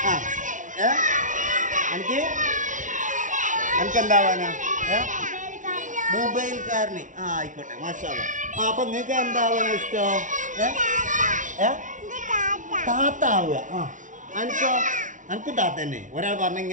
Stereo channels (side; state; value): left; late; 0.37 ms